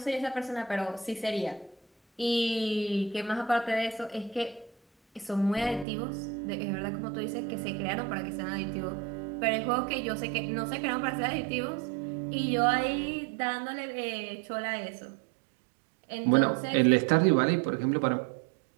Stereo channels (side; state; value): left; drops out; at 5.9 s